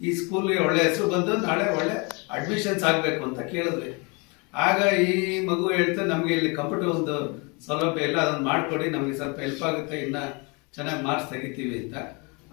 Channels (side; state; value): right; quieter; 30.6 dB